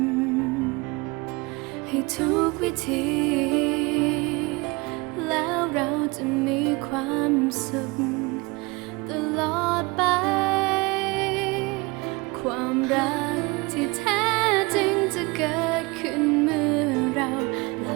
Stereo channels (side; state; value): left; quieter; 25.6 dB